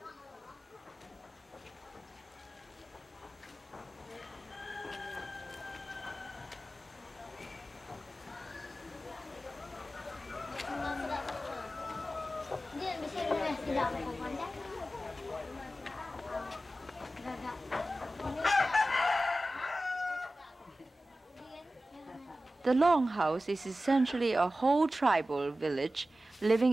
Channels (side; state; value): both; normal; correlation 0.95